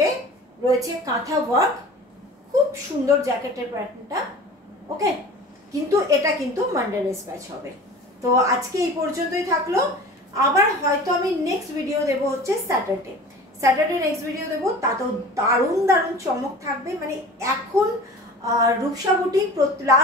রয়েছে কাঁথা ওয়ার্ক, খুব সুন্দর জ্যাকেটের প্যাটার্নটা, ওকে। কিন্তু এটা কিন্তু মানডে ডিসপ্যাচ হবে। তো আজকে এই পর্যন্তই থাকলো। আবার হয়তো আমি নেক্সট ভিডিও দেবো হচ্ছে স্যাটারডে নেক্সট ভিডিও দেবো, তাতেও দারুণ দারুণ চমক থাকবে। মানে এখন রূপসা বুটিক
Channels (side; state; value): both; normal; correlation 0.40